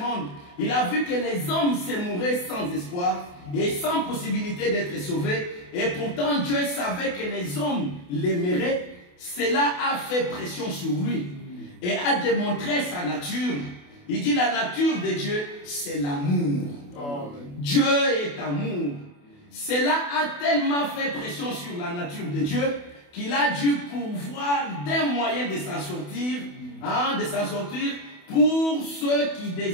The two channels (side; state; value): right; late; 28 ms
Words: il a vu que les hommes se mouraient sans espoir et sans possibilité d'être sauvés. Et pourtant, Dieu savait que les hommes l'aimeraient. Cela a fait pression sur lui et a démontré sa nature. Il dit la nature de Dieu, c'est l'amour. Dieu est amour. Cela a tellement fait pression sur la nature de Dieu qu'il a dû pourvoir des moyens de s'en sortir, pour ceux qui